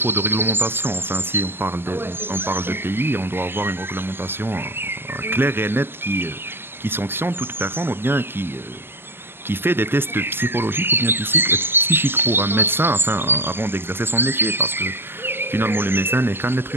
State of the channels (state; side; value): late; left; 0.11 ms